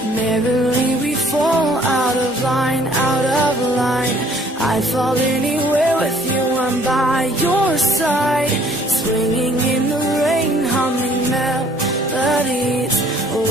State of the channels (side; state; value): both; normal; correlation 0.59